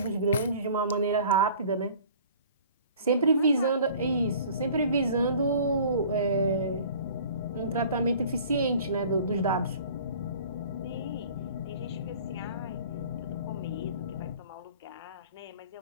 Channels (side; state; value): both; inverted; correlation -0.48